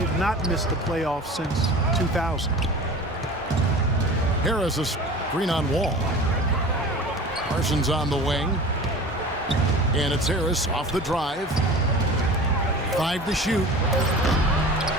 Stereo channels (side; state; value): both; normal; correlation 0.38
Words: not missed the playoffs since 2000. Harris a screen on Wall. Parsons on the wing. And it's Harris off the drive. 5 to shoot.